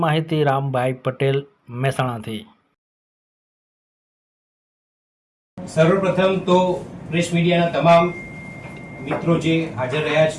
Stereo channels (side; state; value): both; identical; correlation 1.00